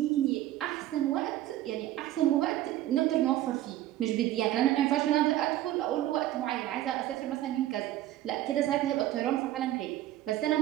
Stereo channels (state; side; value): quieter; left; 14.1 dB